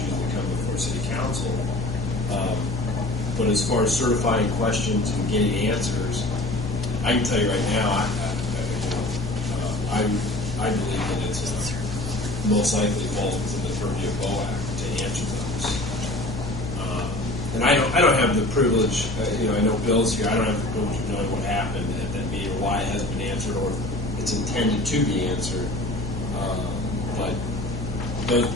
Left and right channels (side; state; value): left; noise; hum, 6 dB below the sound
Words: that come before City Council. But as far as certifying questions and getting answers, I can tell you right now, I believe that it's most likely falls within the purview of BOAC to answer those. And I don't have the privilege. I know Bill's here. I don't have the privilege of knowing what happened at that meeting, or why it hasn't been answered, or if it's intended to be answered. But